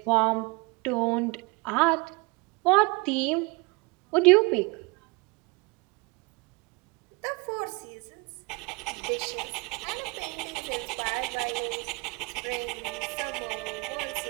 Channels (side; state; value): left; quieter; 26.9 dB